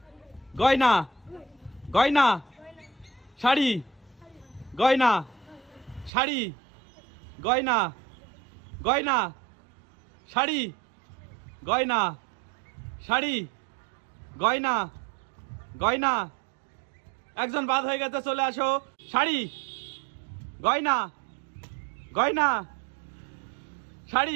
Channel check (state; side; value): drops out; left; at 6.1 s